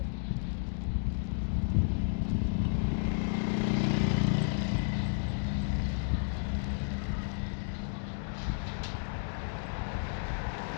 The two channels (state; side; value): silent; right; digital silence